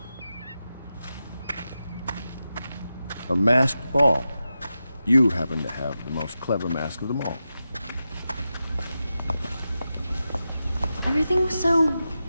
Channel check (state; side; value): inverted; both; correlation -0.91